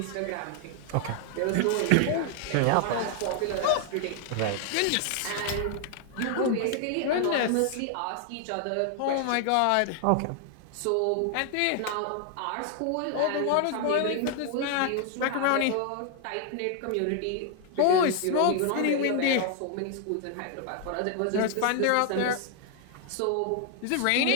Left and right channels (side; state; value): both; different; correlation 0.00